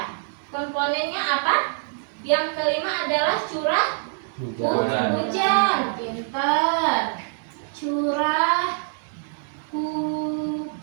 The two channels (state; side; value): silent; left; 62 dB below the other